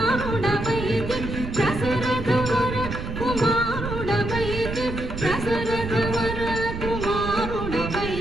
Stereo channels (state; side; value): noise; right; rumble, 6 dB below the sound